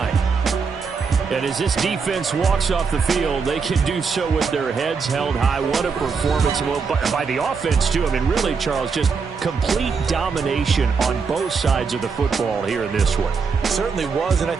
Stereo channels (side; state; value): left; quieter; 5.3 dB